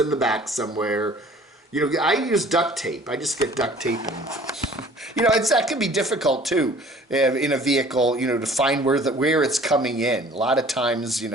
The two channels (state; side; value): normal; both; correlation 0.50